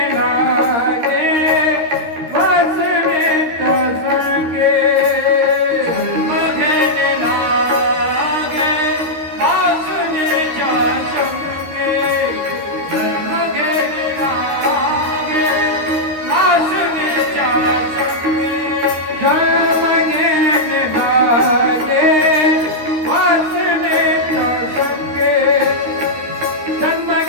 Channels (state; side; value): late; left; 13 ms